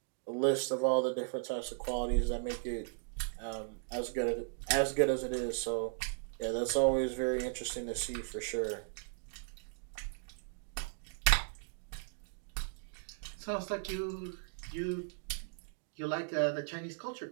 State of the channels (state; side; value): silent; left; digital silence